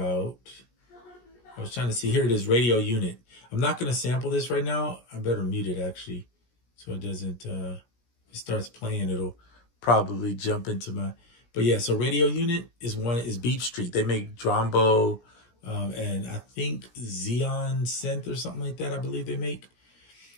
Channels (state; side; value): late; right; 17 ms